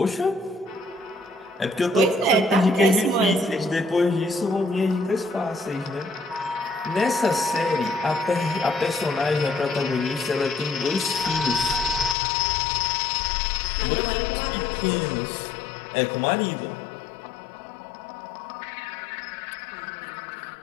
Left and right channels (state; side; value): drops out; right; at 12.2 s